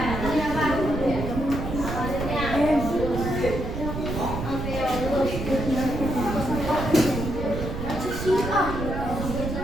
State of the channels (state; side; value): noise; right; rumble, 5 dB below the sound